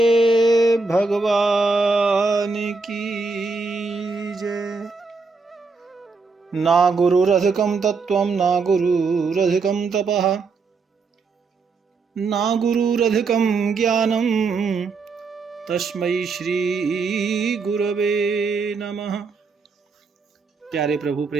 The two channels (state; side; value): quieter; left; 4.3 dB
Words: भगवान की जय। ना गुरुरधिकं तत्त्वं ना गुरुरधिकं तपः ना गुरुरधिकं ज्ञानं तस्मै श्री गुरवे नमः। प्यारे प्रभु